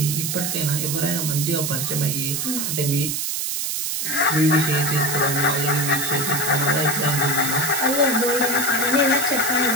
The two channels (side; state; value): right; noise; hiss, 1 dB below the sound